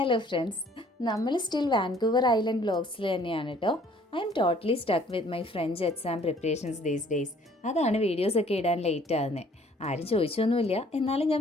friends, നമ്മൾ still Vancouver island വ്ലോഗ്സിൽ തന്നെയാണ് കേട്ടോ. I am totally stuck with my French exam preparations these days. അതാണ് വീഡിയോസൊക്കെ ഇടാൻ ലേറ്റ് ആകുന്നത്. ആരും ചോദിച്ചൊന്നുമില്ല, എന്നാലും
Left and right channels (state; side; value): normal; both; correlation 0.58